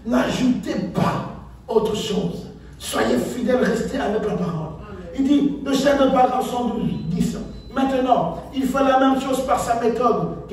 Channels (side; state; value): both; identical; correlation 1.00